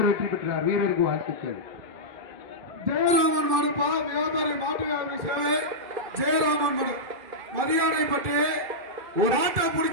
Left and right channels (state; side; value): late; left; 2.6 ms